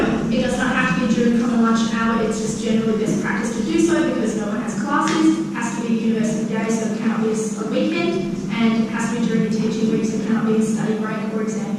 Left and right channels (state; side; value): identical; both; correlation 1.00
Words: does not have to be during common lunch hour, it's just generally best practice to do so because no one has classes, it has to be a university day, so it cannot be a weekend, and it has to be during the teaching week, so it cannot be a study break or exam